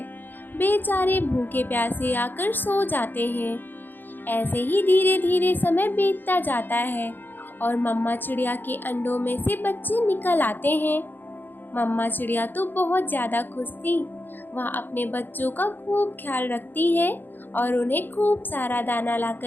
बेचारे भूखे प्यासे आकर सो जाते हैं। ऐसे ही धीरे धीरे समय बीतता जाता है और मम्मा चिड़िया के अंडों में से बच्चे निकल आते हैं। मम्मा चिड़िया तो बहुत ज़्यादा खुश थी। वह अपने बच्चों का खूब ख्याल रखती है और उन्हें खूब सारा दाना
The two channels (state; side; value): late; right; 0.092 ms